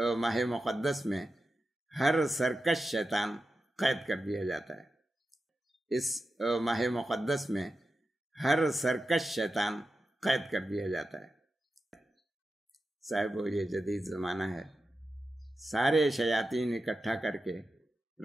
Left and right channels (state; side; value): normal; both; correlation 0.91